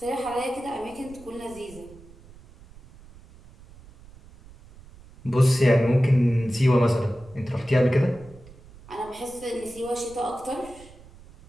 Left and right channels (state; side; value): noise; right; rumble, 22 dB below the sound